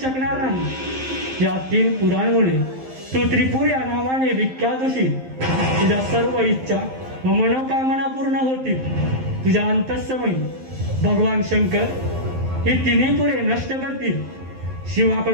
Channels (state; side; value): late; left; 11 ms